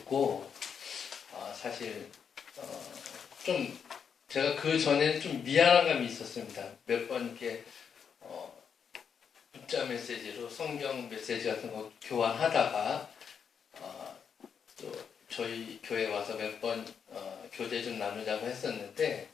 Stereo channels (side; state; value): right; quieter; 7.0 dB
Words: 사실 좀 제가 그 전에는 좀 미안한 감이 있었습니다. 몇 번 이렇게 문자 메시지로 성경 메시지 같은 거 교환하다가 또 저희 교회 와서 몇 번 교제 좀 나누자고 했었는데